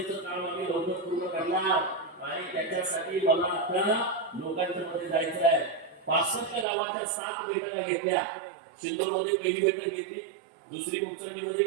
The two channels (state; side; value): drops out; left; at 6.7 s